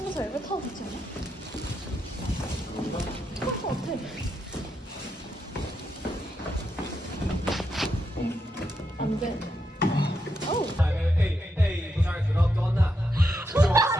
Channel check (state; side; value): normal; both; correlation 0.82